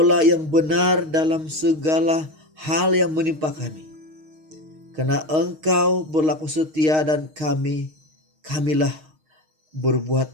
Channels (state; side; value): late; left; 6.4 ms